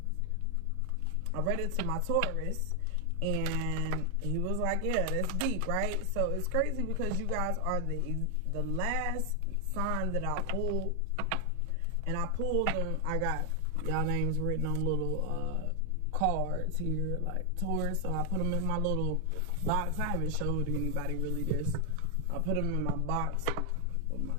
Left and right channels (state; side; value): different; both; correlation 0.00